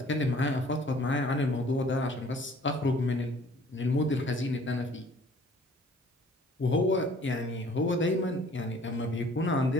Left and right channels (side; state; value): both; normal; correlation 0.54